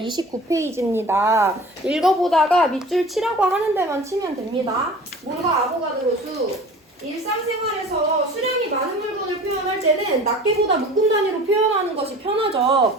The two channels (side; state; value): both; normal; correlation 0.42